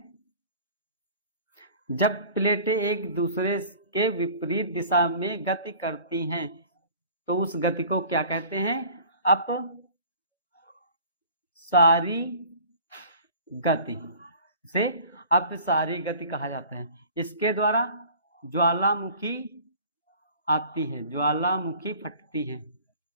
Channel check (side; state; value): both; inverted; correlation -0.47